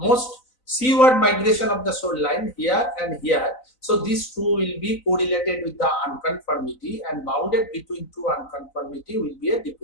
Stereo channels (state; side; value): late; right; 4.0 ms